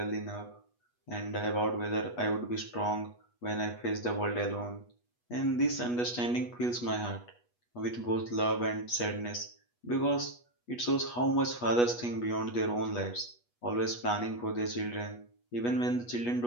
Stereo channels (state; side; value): late; right; 8.3 ms